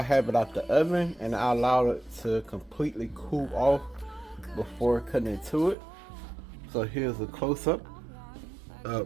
have it out the oven and I allow it to completely cool off before cutting into it. So here's a close-up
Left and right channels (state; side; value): drops out; left; at 5.8 s